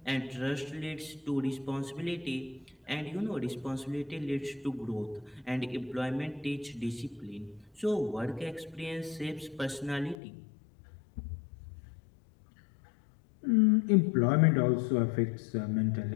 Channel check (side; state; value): right; drops out; at 10.2 s